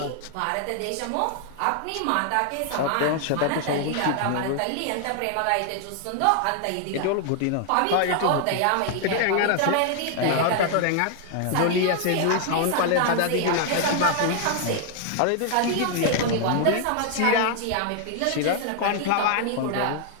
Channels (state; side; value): different; both; correlation 0.00